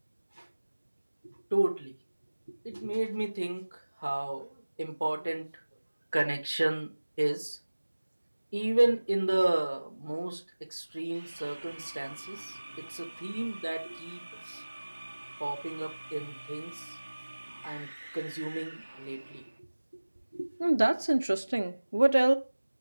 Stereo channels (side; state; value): both; inverted; correlation -1.00